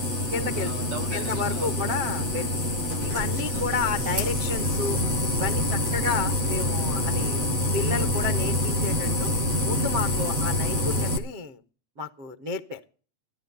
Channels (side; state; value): left; late; 8.0 ms